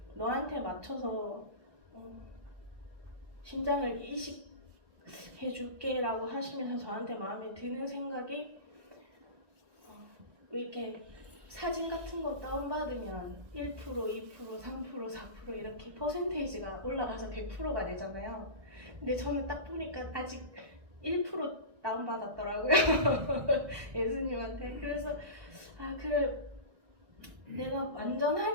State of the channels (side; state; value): left; late; 1.5 ms